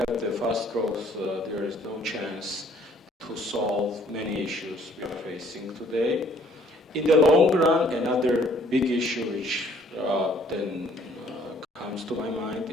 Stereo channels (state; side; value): normal; both; correlation 0.60